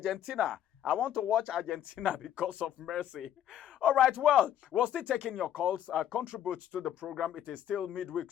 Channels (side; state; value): right; quieter; 10.8 dB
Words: I want to watch Argentina because of Messi. All right, well, we're still taking your calls. Contribute to the program. It is still Midweek